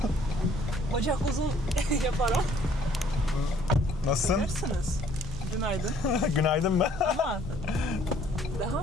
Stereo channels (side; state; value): both; normal; correlation 0.61